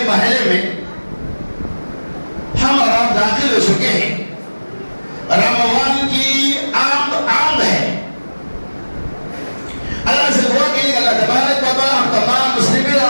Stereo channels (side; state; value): both; inverted; correlation -1.00